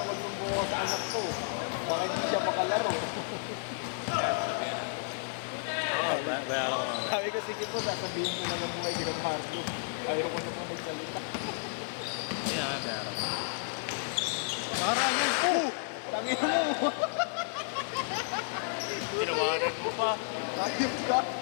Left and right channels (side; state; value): right; silent; digital silence